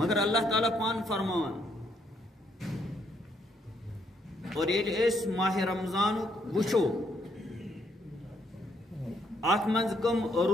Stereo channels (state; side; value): normal; both; correlation 0.72